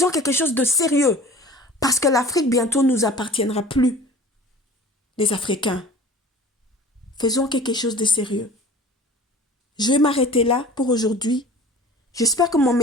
quelque chose de sérieux. Parce que l'Afrique bientôt nous appartiendra plus. Les Africains. Faisons quelque chose de sérieux. Je vais m'arrêter là pour aujourd'hui. J'espère que mon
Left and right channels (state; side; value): normal; both; correlation 0.42